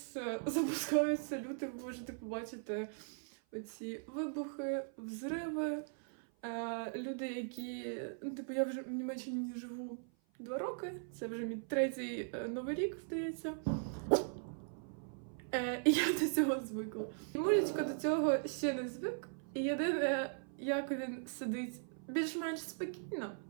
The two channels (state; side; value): silent; left; 52 dB below the other